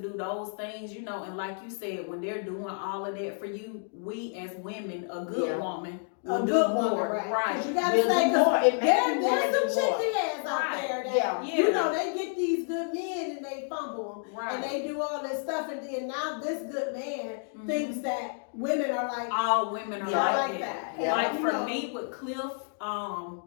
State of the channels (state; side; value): silent; right; 58 dB below the other